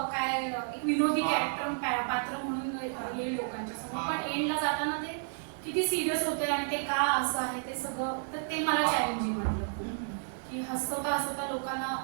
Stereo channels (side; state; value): left; silent; digital silence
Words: काय एक विनोदी कॅरेक्टर पात्र म्हणून येईल लोकांच्या समोर पण एंडला जाताना ते किती सिरियस होते आणि ते का असं आहे ते सगळं तर ते मला चॅलेंजिंग वाटलं की हसवता लोकांना